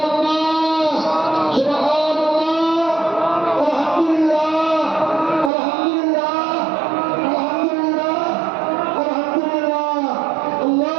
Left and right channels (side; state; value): left; drops out; at 5.5 s